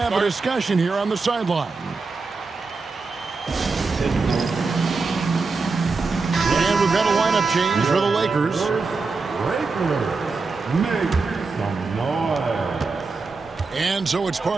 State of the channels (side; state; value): left; quieter; 4.2 dB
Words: a discussion here on the sideline. And we've got a lineup change for the Lakers. Make some noise. And so it's